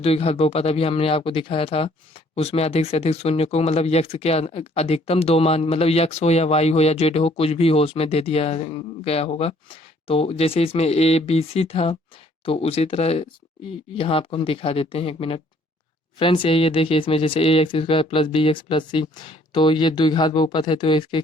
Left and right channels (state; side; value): normal; both; correlation 0.61